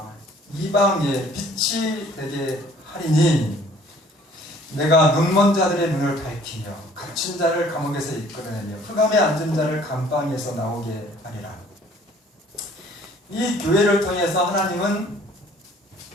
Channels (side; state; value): both; normal; correlation 0.56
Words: 이방의 빛이 되게 하리니 내가 눈먼 자들의 눈을 밝히며 갇힌 자를 감옥에서 이끌어내며 흑암에 앉은 자를 감방에서 나오게 하리라. 이 교회를 통해서 하나님은